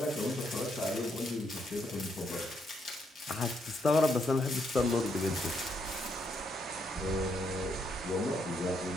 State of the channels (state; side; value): normal; both; correlation 0.76